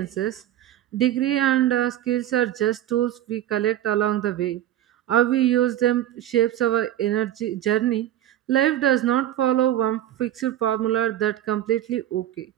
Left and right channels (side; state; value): left; quieter; 12.4 dB